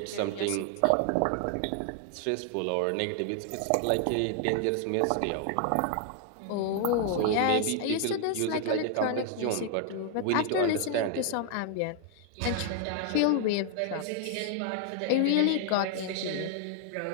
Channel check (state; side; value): different; both; correlation 0.00